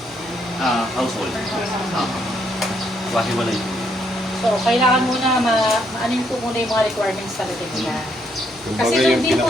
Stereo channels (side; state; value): both; normal; correlation 0.73